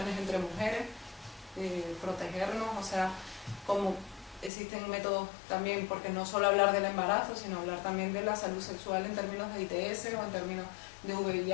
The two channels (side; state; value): right; drops out; at 4.5 s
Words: entre mujeres, protegernos, o sea, como existen métodos también, porque no solo hablar del embarazo, sino hablar también de la salud sexual en términos de ITS, o en términos de